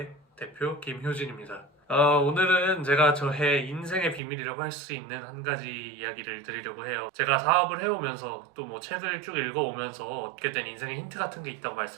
대표 김효진입니다. 오늘은 제가 저의 인생의 비밀이라고 할 수 있는 한 가지 이야기를 드리려고 해요. 제가 사업을 해오면서 또 뭐 책을 쭉 읽어오면서 얻게 된 인생의 힌트 같은 게 있다고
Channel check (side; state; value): left; drops out; at 4.2 s